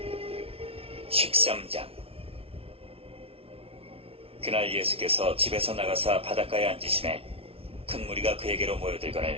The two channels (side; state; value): left; late; 0.27 ms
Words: 13장. 그날 예수께서 집에서 나가사 바닷가에 앉으시매 큰 무리가 그에게로